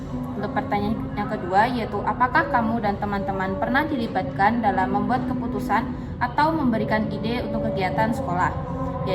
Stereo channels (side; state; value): both; identical; correlation 1.00